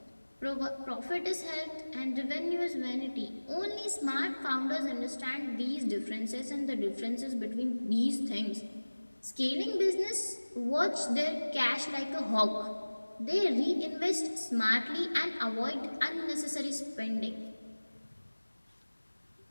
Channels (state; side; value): inverted; both; correlation -1.00